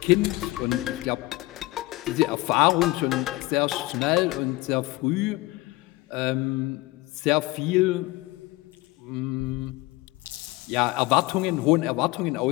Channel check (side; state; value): right; quieter; 20.2 dB